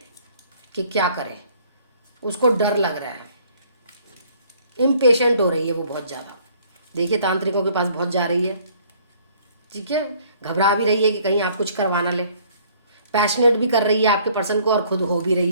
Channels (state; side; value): inverted; both; correlation -0.59